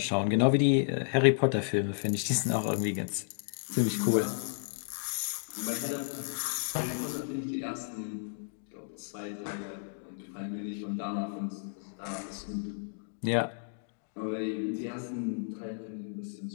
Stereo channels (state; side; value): silent; right; digital silence